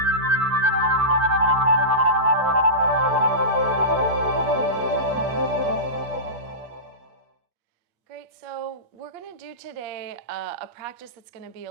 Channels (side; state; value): left; late; 8.4 ms